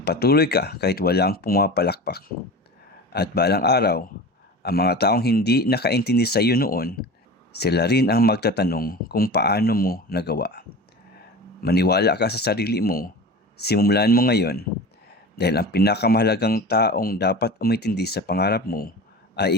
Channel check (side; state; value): both; normal; correlation 0.33